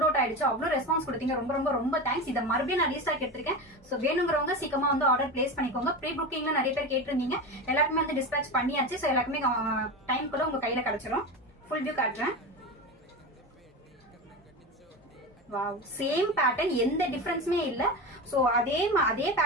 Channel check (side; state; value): both; normal; correlation 0.23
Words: அவுட் ஆயிடுச்சு. அவ்வளவு ரெஸ்பான்ஸ் கொடுத்தீங்க, ரொம்ப ரொம்ப ரொம்ப தேங்க்ஸ். இதை மறுபடியும் நான் ரீஸ்டாக் எடுத்திருக்கேன். சோ வேணுங்கிறவங்க சீக்கிரமா வந்து ஆர்டர் பிளேஸ் பண்ணிக்கோங்க. ப்ரீ புக்கிங்ல நிறைய பேர் கேட்டிருந்தீங்க, எல்லாருக்குமே வந்து டிஸ்பேச் பண்ணியாச்சு. சோ எல்லாருக்குமே டைம்குள்ள உங்க கையில கிடைச்சிடும். ஃபுல் வியூ காட்டுறேன். வாவ், சேம் பேட்டர்ன், எந்த டிஃபரன்ஸுமே இல்ல. சோ அதே